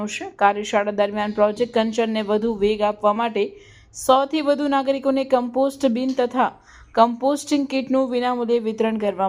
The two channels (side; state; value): both; identical; correlation 1.00